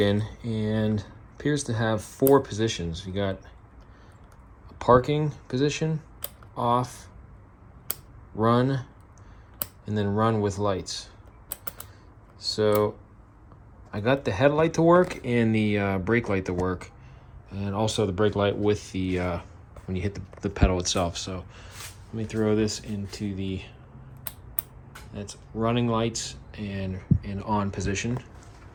and appears to have 4 positions. You got a parking position, off, run, and then run with lights. So I got the headlight to work and the brake light to work, and also the brake light with the when you hit the pedal itself. So let me throw this into the, that's running lights and on position.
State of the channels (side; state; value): both; identical; correlation 1.00